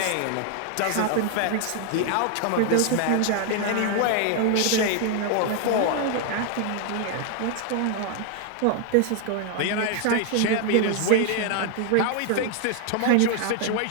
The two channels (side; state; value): both; different; correlation 0.00